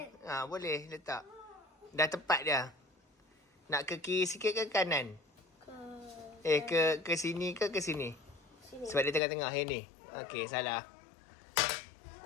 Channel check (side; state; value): right; drops out; at 9.2 s